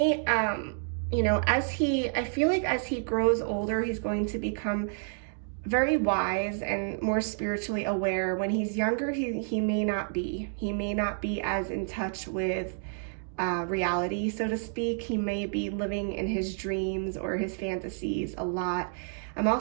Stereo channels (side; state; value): left; silent; 58 dB below the other